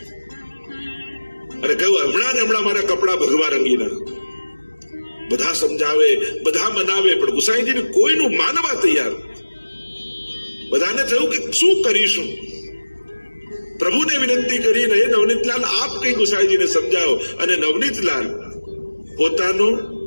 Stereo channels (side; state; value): both; inverted; correlation -1.00